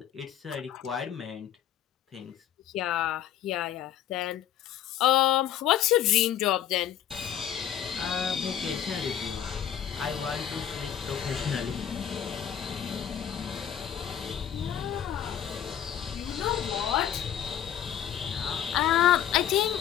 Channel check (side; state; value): right; quieter; 10.0 dB